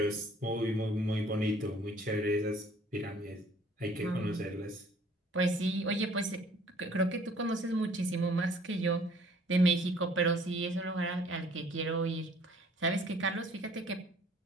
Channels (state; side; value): normal; both; correlation 0.56